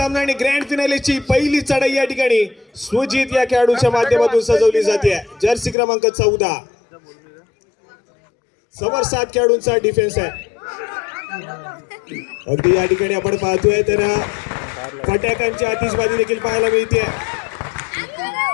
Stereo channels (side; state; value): right; drops out; at 5.8 s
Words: आणि ग्रँड फिनालेची पहिली चढाई या ठिकाणी सुजित या खेळाडूच्या माध्यमातून सजवली जाते. जर्सी क्रमांक 14 समोर 7 खेळाडूंचा डिफेन्स आहे. अगदी या ठिकाणी आपण पाहतोय तर फटाक्यांची आतिषबाजी देखील पाहायला मिळते.